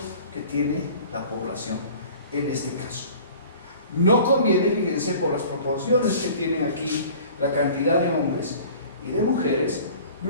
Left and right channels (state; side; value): inverted; both; correlation -0.46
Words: que tiene la población en este caso. No conviene, fíjense, por las proporciones que tienen aquí la cantidad de hombres y de mujeres,